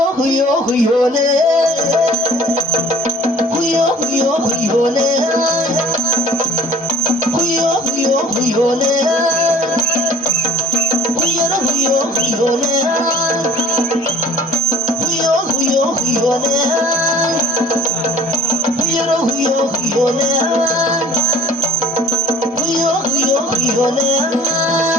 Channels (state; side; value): normal; both; correlation 0.51